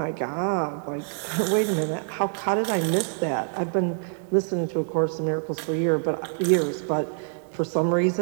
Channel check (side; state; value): left; silent; digital silence